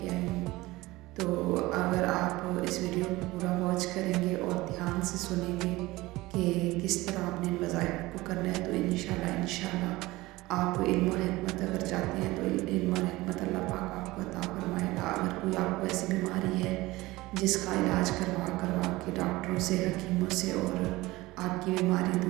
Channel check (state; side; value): quieter; left; 19.7 dB